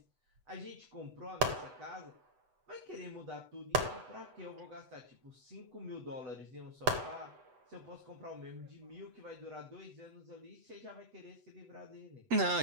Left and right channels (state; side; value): late; left; 8.0 ms